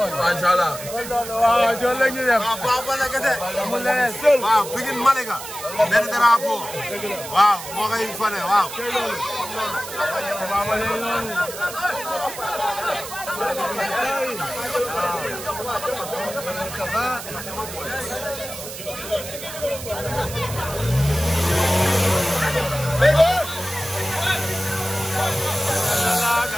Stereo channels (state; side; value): noise; right; hiss, 10 dB below the sound